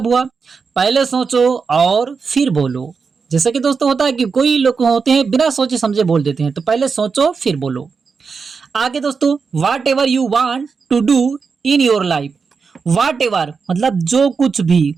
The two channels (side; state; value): left; quieter; 5.3 dB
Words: हुआ? पहले सोचो और फिर बोलो। जैसे कि दोस्तों होता है कि कोई लोग होते हैं बिना सोचे समझे बोल देते हैं, तो पहले सोचो फिर बोलो। आगे दोस्तों, whatever you want to do in your life. Whatever मतलब जो कुछ भी,